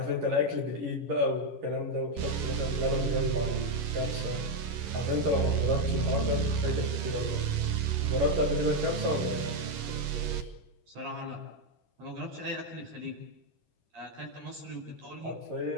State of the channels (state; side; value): late; left; 11 ms